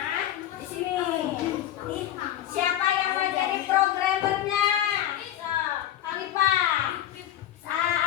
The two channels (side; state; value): right; quieter; 12.0 dB